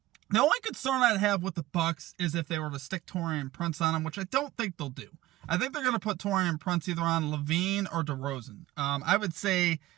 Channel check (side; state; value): left; quieter; 16.6 dB